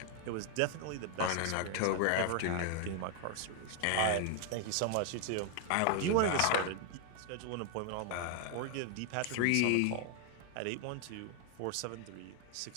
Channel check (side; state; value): both; different; correlation 0.00